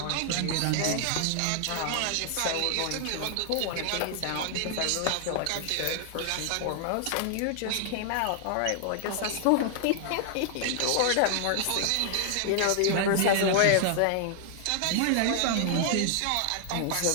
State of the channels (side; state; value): both; different; correlation 0.00